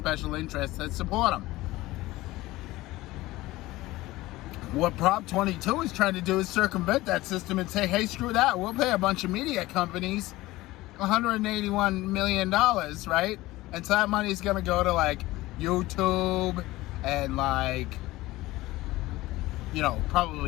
interests that support them. What Prop 22 is trying to do is circumvent that system and say, hey, screw that, we'll pay a bunch of media companies $181 million, right? And so that money is going to go to, like, YouTube and, like,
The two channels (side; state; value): right; quieter; 18.4 dB